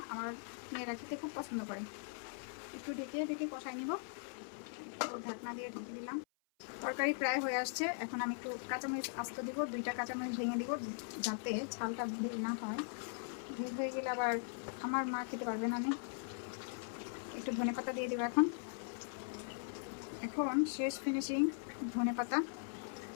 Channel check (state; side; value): silent; right; 51 dB below the other